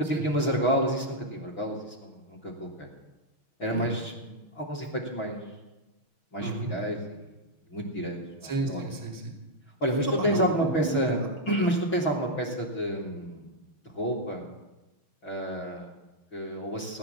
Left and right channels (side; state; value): right; late; 6.0 ms